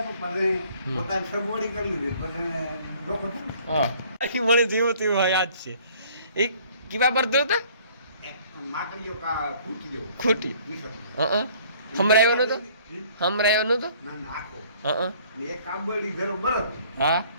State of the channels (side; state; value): both; inverted; correlation -0.56